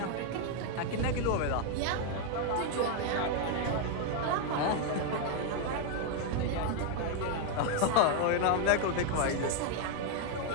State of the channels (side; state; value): both; different; correlation 0.01